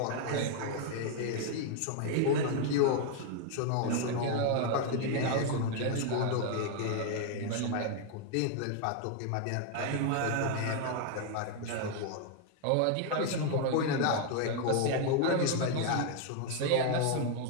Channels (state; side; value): different; both; correlation 0.00